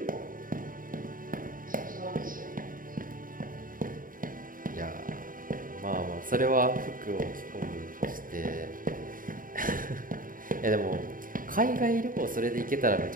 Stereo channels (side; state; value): left; late; 0.40 ms